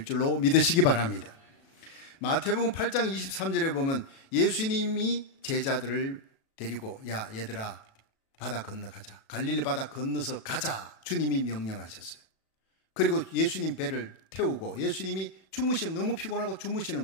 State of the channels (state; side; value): late; right; 37 ms